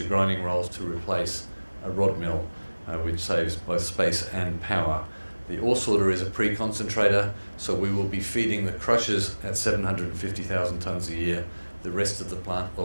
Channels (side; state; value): both; inverted; correlation -1.00